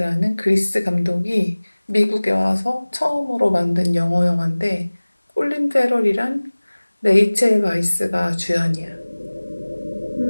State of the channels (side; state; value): both; inverted; correlation -1.00